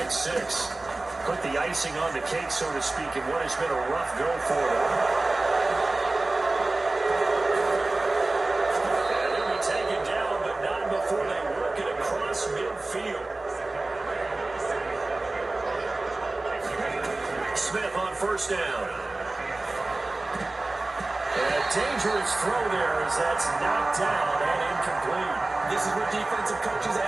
6 put the icing on the cake, so to speak, in what has been a rough go for them. Before they work it across midfield. Smith on first down. And a dangerous throw there as that's knocked down and incomplete. This is what defensive coaches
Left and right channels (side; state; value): left; quieter; 3.0 dB